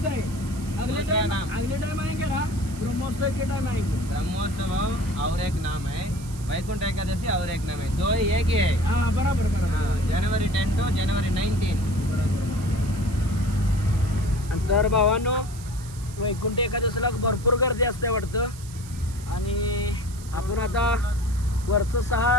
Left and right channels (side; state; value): right; noise; hiss, 18 dB below the sound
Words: है. अगले टाइम आएंगे ना, ब्रह्मोत्सव के टाइम आएंगे. ब्रह्मोत्सव और एक नाम है, वैकुंठ एकादशी और एक नाम है. 2 ही एक ही है. हाँ, बराबर. January 10 to January 19. तर भावांनो वैकुंठ एकादशीला भरपूर गर्दी असते वाटतं आणि आपण आता वरचं